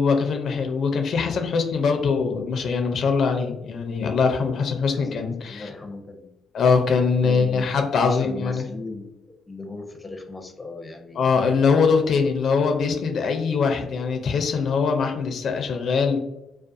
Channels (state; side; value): quieter; right; 4.9 dB